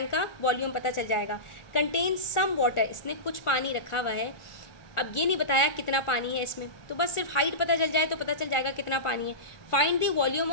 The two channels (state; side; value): late; right; 1.4 ms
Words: का वॉल्यूम पता चल जाएगा। कंटेन सम वाटर, इसने कुछ पानी रखा हुआ है। अब ये नहीं बताया कितना पानी है इसमें, तो बस सिर्फ हाइट पता चल जाए तो पता चल जाएगा कितना पानी है। Find the volume